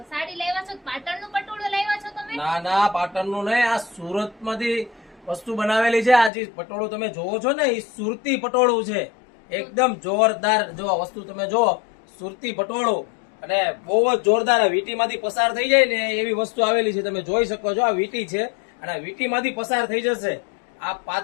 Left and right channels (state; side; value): drops out; right; at 6.3 s